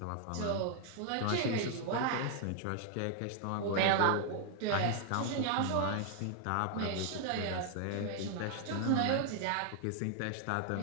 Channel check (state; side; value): different; both; correlation 0.00